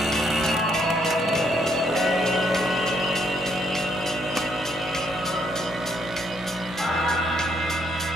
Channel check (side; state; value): both; normal; correlation 0.72